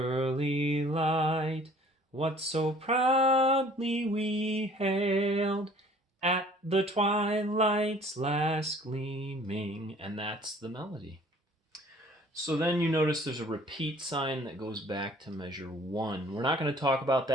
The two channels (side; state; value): both; normal; correlation 0.53